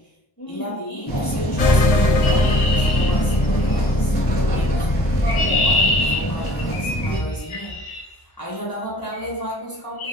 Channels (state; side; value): late; right; 1.0 ms